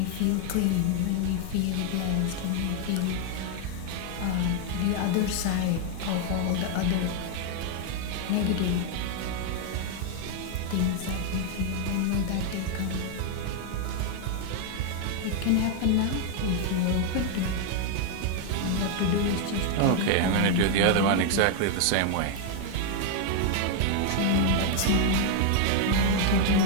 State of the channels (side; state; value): both; different; correlation 0.00